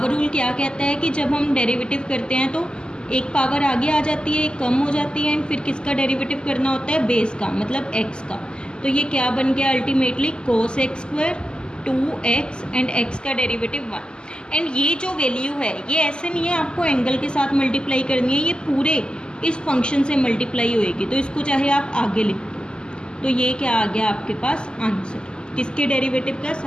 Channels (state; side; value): late; right; 0.048 ms